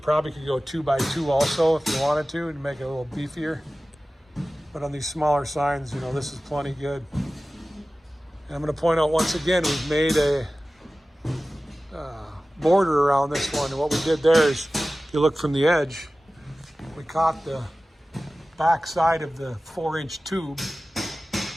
could go 2 by 2 also if you wanted to make it a little beefier. But on these smaller signs, you know, this is plenty good. And I'm going to point out once again, we've made a border around this one. And what we did there is, if you look from the edge, we caught the back side of the 4-inch tube.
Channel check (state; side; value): normal; both; correlation 0.96